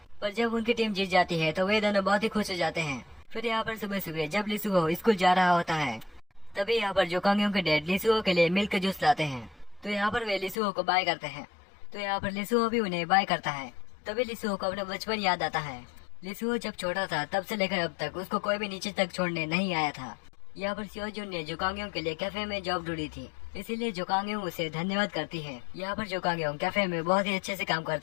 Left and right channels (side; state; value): right; drops out; at 10.6 s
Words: पर जब उनकी टीम जीत जाती है तो वे दोनों बहुत ही खुश हो जाते हैं। फिर यहाँ पर सुबह सुबह जब लिसुहो स्कूल जा रहा होता है, तभी यहाँ पर जोकांगयों के डैड लिसुहो के लिए मिल्क जूस लाते हैं। तो यहाँ पर वे लिसुहो को बाय करते हैं, तो यहाँ पर लिसुहो भी उन्हें बाय करता है। तभी लिसुहो को अपना बचपन याद आता है। लिसुहो जब छोटा था तब से लेकर अब तक उसको कोई भी नीचे तक छोड़ने नहीं आया था। यहाँ पर सियोजुन ने जोकांगयों के लिए कैफे में जॉब ढूंढी थी, इसीलिए जोकांगयों उसे धन्यवाद करती है। यहाँ पर जोकांगयों कैफे में बहुत ही अच्छे से काम